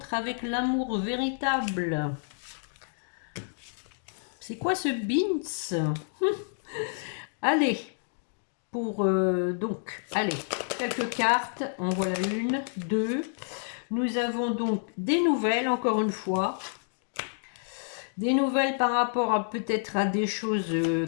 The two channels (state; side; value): silent; right; digital silence